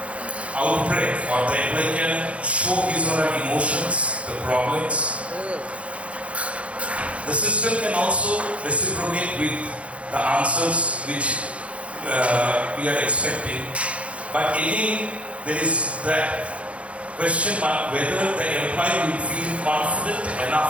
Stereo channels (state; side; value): late; left; 0.063 ms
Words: outbreak, or the employee can show his or her emotions, the problems. The system can also reciprocate with the answers which we are expecting. But again, there is that question mark whether the employee will feel confident